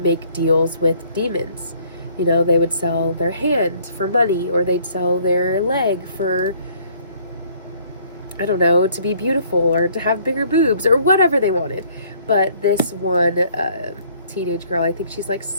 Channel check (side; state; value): both; inverted; correlation -0.60